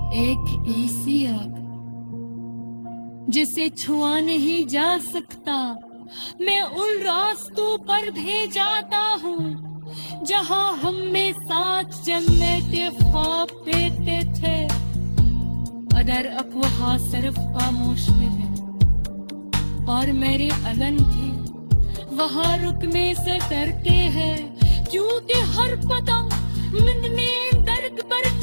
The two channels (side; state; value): both; inverted; correlation -1.00